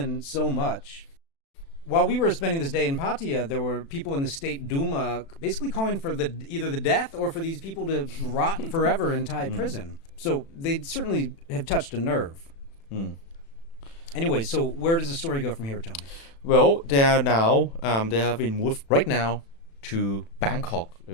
so much, while we were spending this day in Pattaya, there were people in the State Duma basically calling for either the death or for these people to rot forever in Thai prison. So they certainly have touched a nerve. Anyway, so where does the story go from here, Tony? Well, they are now, they have been moved right now to Bangkok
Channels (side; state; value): right; late; 36 ms